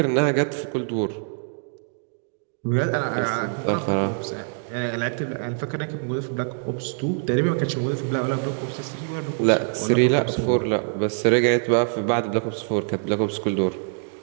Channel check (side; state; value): left; silent; 62 dB below the other